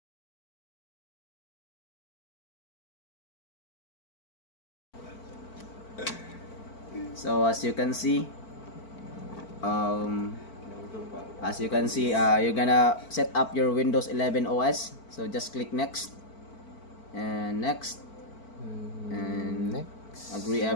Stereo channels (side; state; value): right; late; 4.5 ms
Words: So as you can see, you're gonna set up your Windows 11 OS. So just click next and next agree